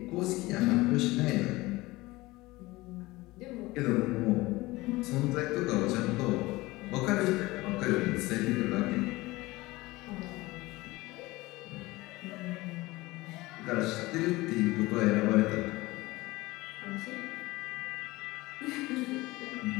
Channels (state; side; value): quieter; right; 20.3 dB